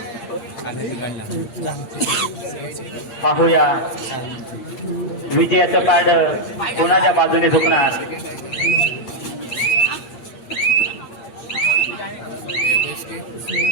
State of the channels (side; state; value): right; late; 8.6 ms